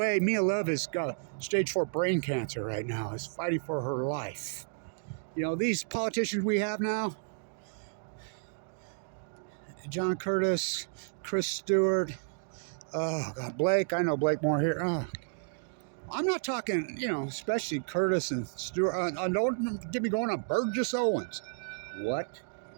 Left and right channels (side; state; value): left; silent; digital silence